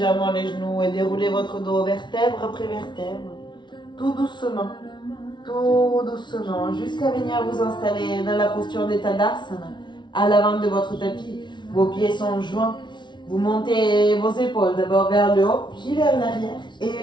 les genoux et déroulez votre dos vertèbre après vertèbre. Tout doucement, jusqu'à venir vous installer dans la posture de Tadasana, à l'avant de votre tapis. Vos pieds sont joints. Vous montez vos épaules d'abord vers le haut, puis vers l'arrière et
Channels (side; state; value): right; late; 0.22 ms